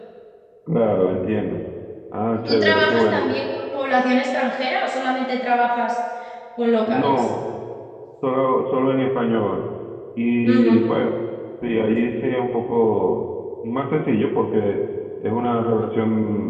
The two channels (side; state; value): both; identical; correlation 1.00